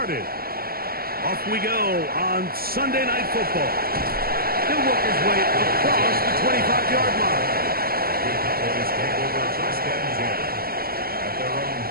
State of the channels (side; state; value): left; late; 0.44 ms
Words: Off we go on Sunday Night Football. He'll work his way across the 25-yard line. The Cowboys take over first and 10 at their own